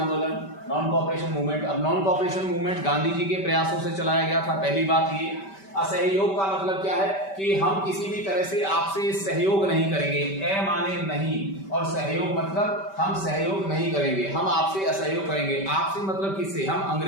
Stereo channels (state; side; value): late; right; 5.1 ms